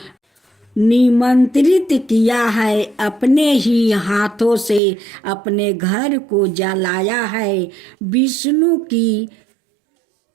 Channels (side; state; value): left; drops out; at 4.8 s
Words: निमंत्रित किया है। अपने ही हाथों से अपने घर को जलाया है। विष्णु की